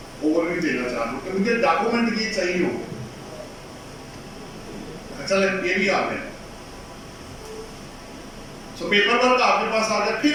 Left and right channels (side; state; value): both; identical; correlation 1.00